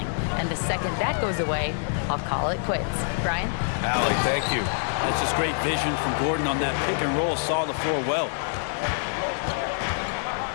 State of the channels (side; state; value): right; silent; digital silence